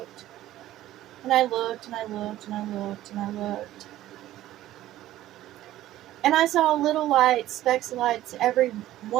And I looked, and I looked, and I looked, and I looked. And I saw little lights, specks of lights every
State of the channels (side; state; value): left; quieter; 14.2 dB